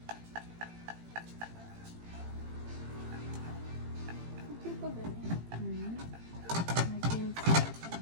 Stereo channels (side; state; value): left; late; 18 ms